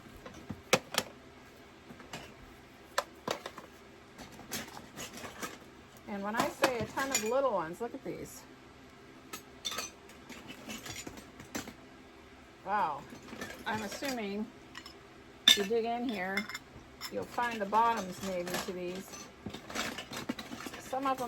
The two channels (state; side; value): identical; both; correlation 1.00